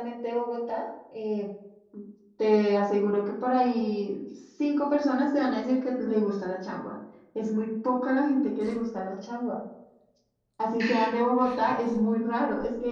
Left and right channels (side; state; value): both; identical; correlation 1.00